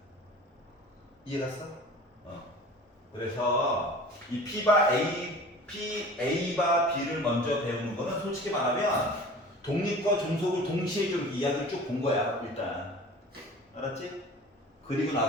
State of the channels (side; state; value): both; normal; correlation 0.41